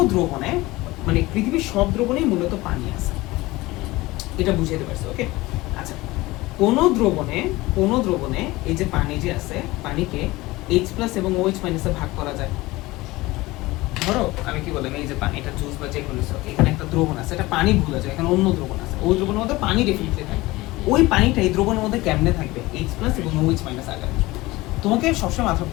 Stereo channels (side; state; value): right; quieter; 20.0 dB